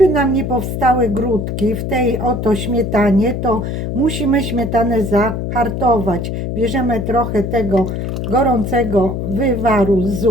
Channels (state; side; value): noise; left; hum, 3 dB below the sound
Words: nam nie powstały grudki w tej oto śmietanie, to musimy śmietanę zahartować. Bierzemy trochę tego gorącego wywaru z